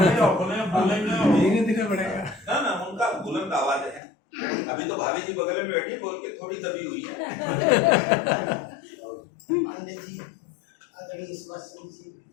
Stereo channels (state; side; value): drops out; right; at 4.0 s